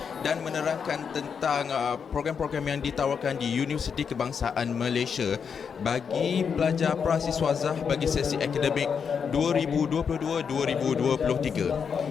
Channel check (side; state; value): right; quieter; 6.6 dB